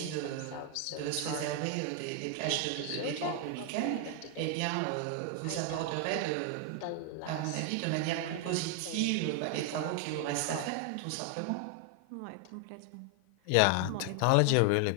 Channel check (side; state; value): both; different; correlation 0.00